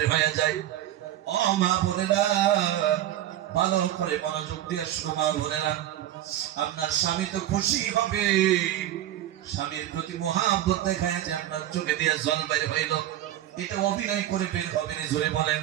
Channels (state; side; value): quieter; left; 12.9 dB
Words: হয়ে যায়, ও মা বোনেরা, ভালো করে মনোযোগ দিয়ে শুনো মা বোনেরা, আপনার স্বামী তো খুশি হবে। স্বামীর প্রতি মহাব্বত দেখায় যে আপনার চোখে দিয়ে জল বাইর হইল, এটা অভিনয় করে বের হবে না। জোরে বলেন,